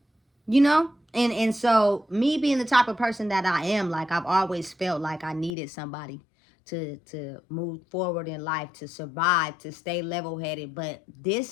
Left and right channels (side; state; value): right; drops out; at 5.6 s